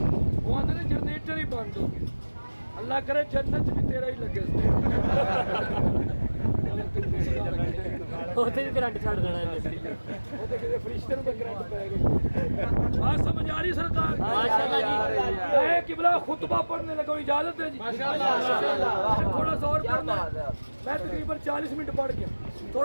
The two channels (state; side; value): inverted; both; correlation -1.00